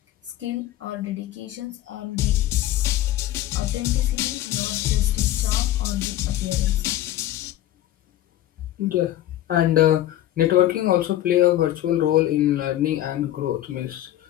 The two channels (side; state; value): right; quieter; 13.7 dB